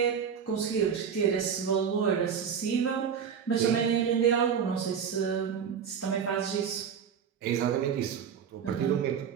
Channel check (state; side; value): quieter; left; 7.4 dB